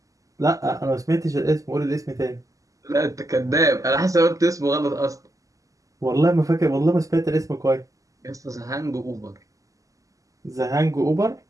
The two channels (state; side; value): late; left; 0.16 ms